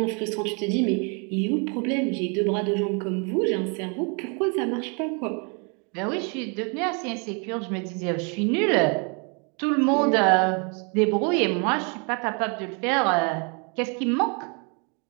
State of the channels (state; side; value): quieter; left; 35.1 dB